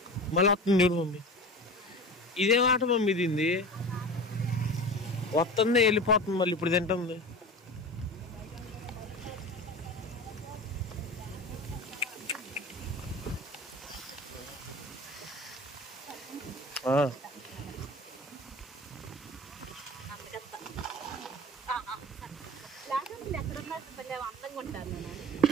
మళ్ళీ వస్తుంది చూడు మమ్మీ. ఇదేం ఆట మమ్మీ దీంది? వస్తుంది వెళ్ళిపోతుంది మళ్ళీ ఇప్పుడు తింటుంది.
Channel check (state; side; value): normal; both; correlation 0.33